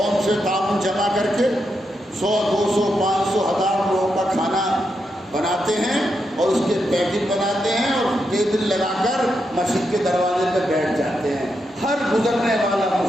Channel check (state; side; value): normal; both; correlation 0.84